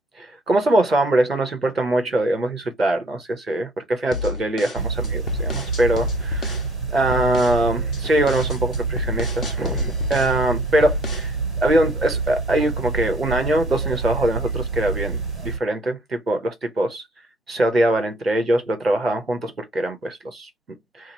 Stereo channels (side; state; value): both; normal; correlation 0.59